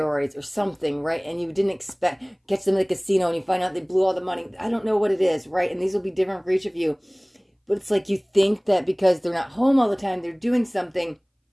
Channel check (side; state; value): both; identical; correlation 1.00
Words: or something, right? And you didn't expect, catch them at the casino and you find out they blew all the money. I don't know what it is, right? And these will be different for each of you, but it's like you think that because they're not home all the time, they're doing something.